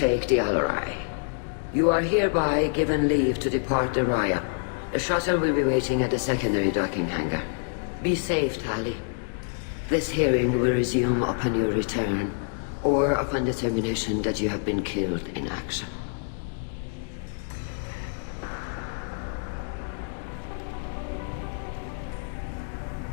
the Alarai. You are hereby given leave to depart the Raya. The shuttle will be waiting at the secondary docking hangar. Be safe, Tali. This hearing will resume upon your return, or upon determination that you have been killed in action.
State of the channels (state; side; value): silent; right; digital silence